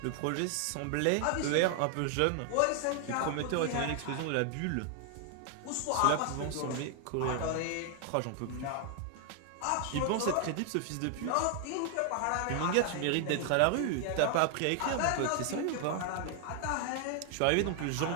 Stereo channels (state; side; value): different; both; correlation 0.00